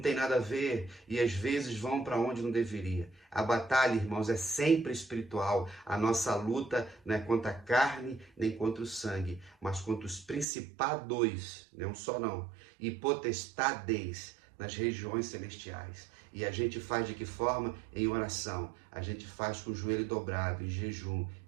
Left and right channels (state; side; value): drops out; left; at 10.5 s